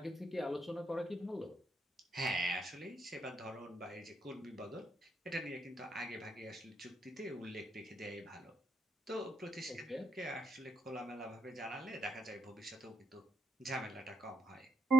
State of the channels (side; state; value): both; normal; correlation 0.77